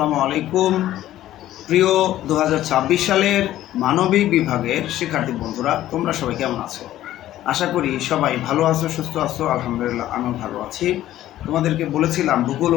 আলাইকুম। প্রিয় 2026 সালের মানবিক বিভাগের শিক্ষার্থী বন্ধুরা, তোমরা সবাই কেমন আছো? আশা করি সবাই ভালো আছো, সুস্থ আছো। আলহামদুলিল্লাহ, আমিও ভালো আছি। তোমাদেরকে বলেছিলাম ভূগোল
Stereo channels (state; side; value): quieter; right; 13.6 dB